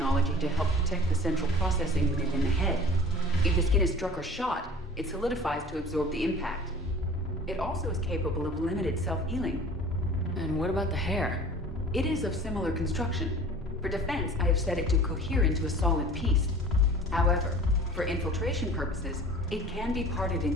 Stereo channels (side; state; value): both; normal; correlation 0.43